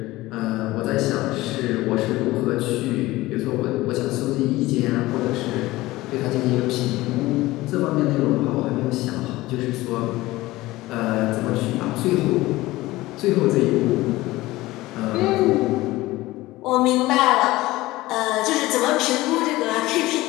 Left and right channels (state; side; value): quieter; right; 18.5 dB